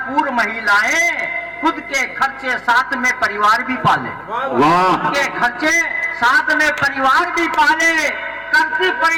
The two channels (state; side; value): noise; left; hum, 28 dB below the sound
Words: महिलाएं, खुद के खर्चे साथ में परिवार भी पाले। वाह, के खर्चे साथ में परिवार भी पाले। करती